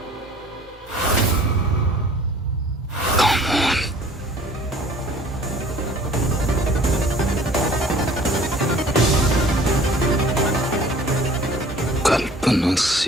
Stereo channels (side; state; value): both; normal; correlation 0.51